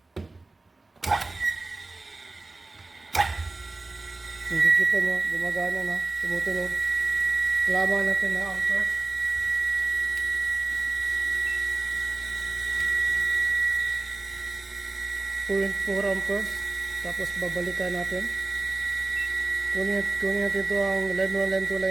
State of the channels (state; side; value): quieter; left; 3.3 dB